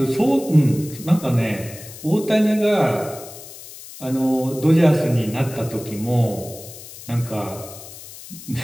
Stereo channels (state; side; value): noise; left; hiss, 16 dB below the sound